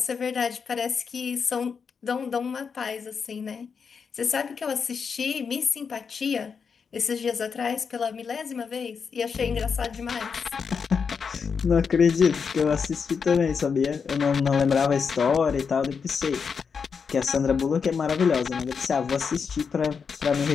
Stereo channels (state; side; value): quieter; right; 6.0 dB